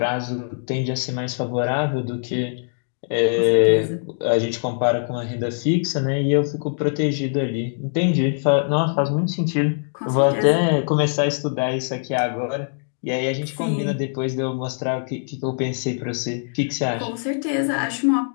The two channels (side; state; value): right; silent; digital silence